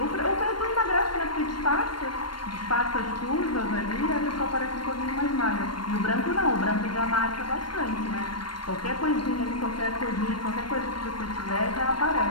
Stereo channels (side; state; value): right; late; 0.72 ms